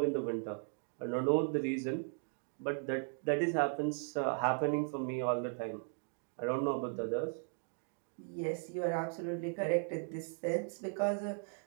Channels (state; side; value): silent; left; 53 dB below the other